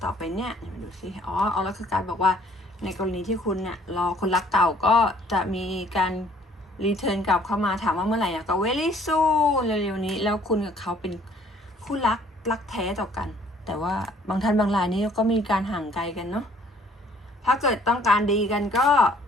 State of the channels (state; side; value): normal; both; correlation 0.59